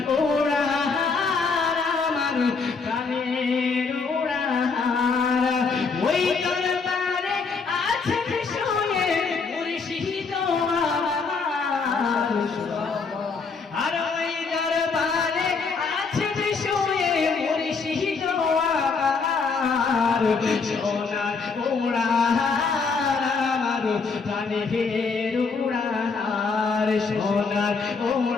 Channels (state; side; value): quieter; right; 4.8 dB